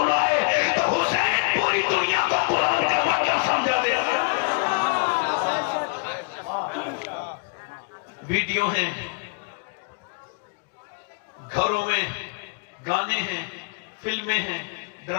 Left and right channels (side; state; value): right; quieter; 32.8 dB